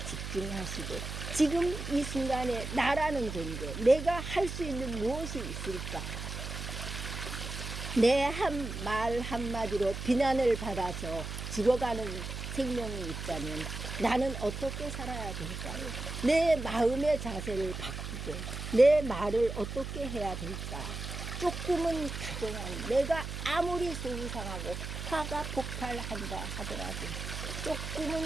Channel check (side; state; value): right; noise; hum, 6 dB below the sound